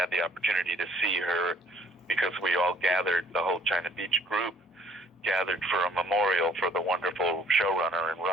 the opportunity to see her because we all gathered, the whole China Beach group gathered for a memorial for the wonderful showrunner and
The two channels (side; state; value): both; normal; correlation 0.60